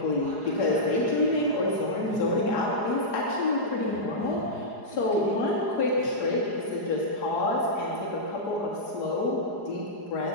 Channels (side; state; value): right; late; 4.8 ms